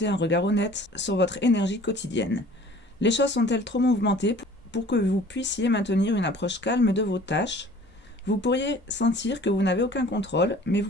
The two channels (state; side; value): normal; both; correlation 0.49